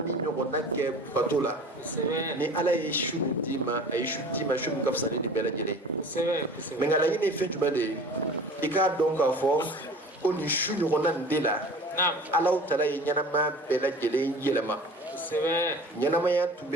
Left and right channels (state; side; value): normal; both; correlation 0.41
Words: ɲɔgɔnna kɛ bato la ni ala ye su min d'i ma a ye su d'i ma su min ka fisa ni nin bɛɛ lajɛlen mɛ nka laɲini ye fɛn jumɛn de ye i k'a dɔn k'a fɔ ko nin su ɲɔgɔnna nin de la alaw tala ye ɲɛnamaya bɛɛ lajɛlen yɛlɛma ɲɛnamaya tun